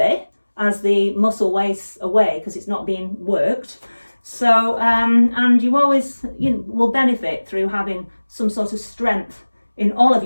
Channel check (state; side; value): inverted; both; correlation -1.00